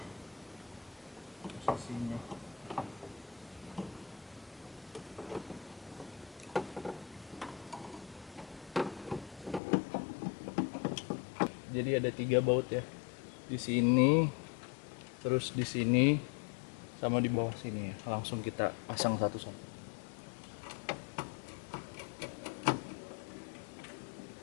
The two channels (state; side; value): drops out; right; at 9.6 s